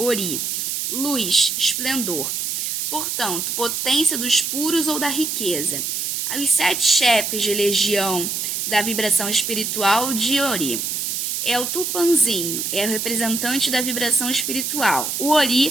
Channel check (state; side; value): noise; right; hiss, 2 dB below the sound